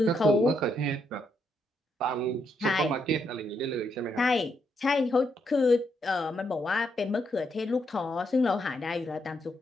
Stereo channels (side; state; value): both; normal; correlation 0.78